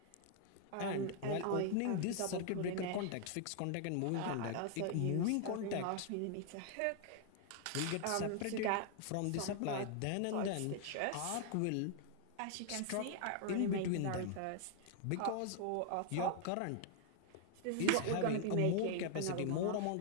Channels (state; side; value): different; both; correlation 0.00